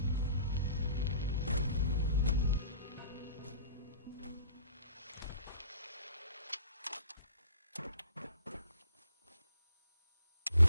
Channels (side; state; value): both; inverted; correlation -0.52